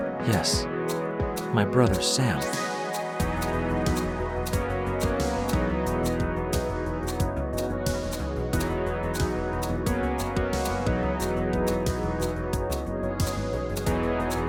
Yes, my brother Sam.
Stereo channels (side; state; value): both; identical; correlation 1.00